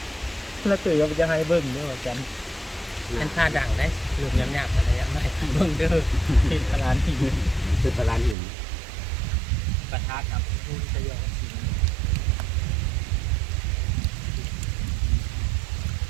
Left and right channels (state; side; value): drops out; left; at 8.3 s